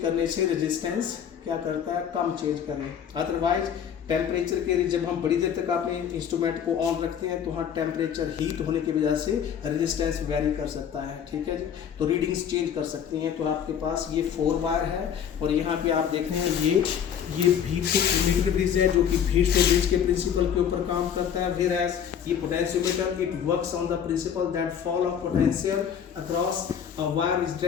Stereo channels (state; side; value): quieter; right; 8.4 dB